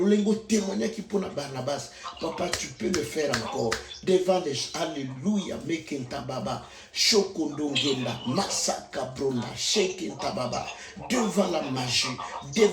témoigner ki pona Barnabas papa tu peux le faire encore devant les alléluia mekenta baba shokondongenda masaka bronda shekenta baba devant la magie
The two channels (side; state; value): both; identical; correlation 1.00